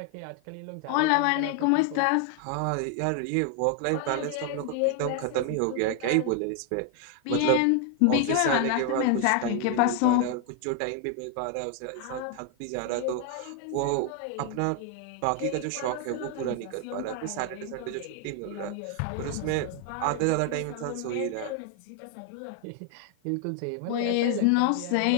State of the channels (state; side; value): different; both; correlation 0.00